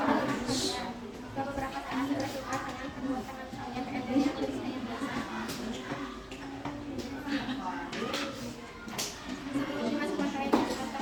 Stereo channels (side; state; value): both; identical; correlation 1.00